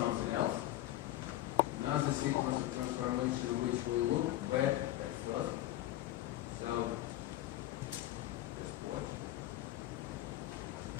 else. Another sequence of transformation which will look bad at first. So just watch.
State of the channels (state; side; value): quieter; right; 14.8 dB